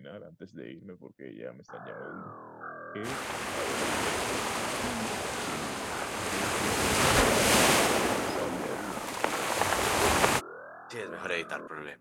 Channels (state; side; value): identical; both; correlation 1.00